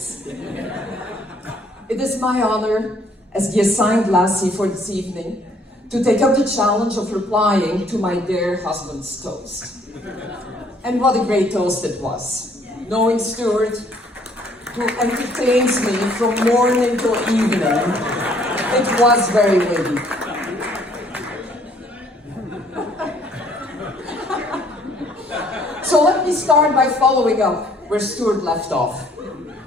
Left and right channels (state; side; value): normal; both; correlation 0.62